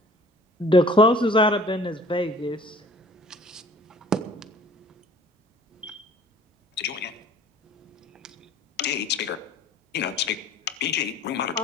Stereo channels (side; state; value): both; normal; correlation 0.50